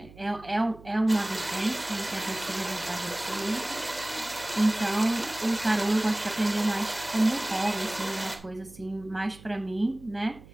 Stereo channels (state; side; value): noise; right; hum, 20 dB below the sound